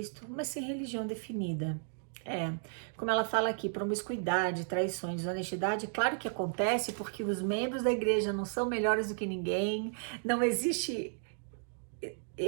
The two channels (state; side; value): silent; left; digital silence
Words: mas sem religião definida. Como ela fala aqui, promiscuidade, traições, desonestidade, claro que acontece porque os membros da igreja não são melhores do que ninguém, não existe,